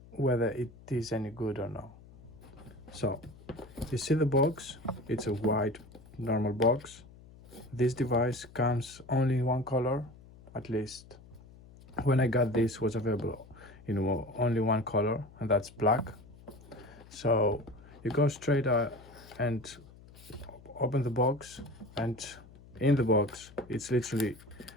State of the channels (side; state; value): left; noise; hum, 21 dB below the sound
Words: whether it is any good or not. So, you see the box, it's a white normal box. This device comes only in one color, at least when I got this was available in only one color, and that's black. So you go straight and open the box, and in the box it's literally